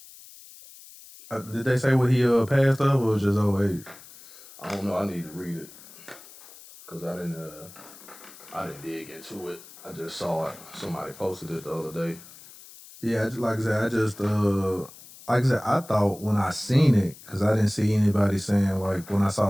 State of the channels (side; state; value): left; noise; hiss, 20 dB below the sound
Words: Did they say what he passed of, or just old age? I don't know. I need to read it because I didn't dig into it. I just saw it. Somebody posted it the other day. Yeah, like I said, I thought when I seen it, because I didn't see anybody saying, like, when I